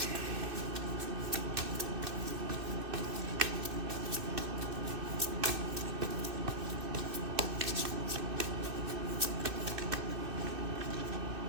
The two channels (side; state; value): left; late; 2.6 ms